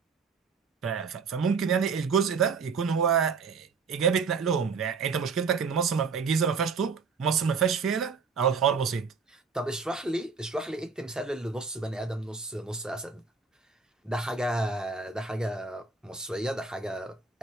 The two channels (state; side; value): quieter; left; 5.2 dB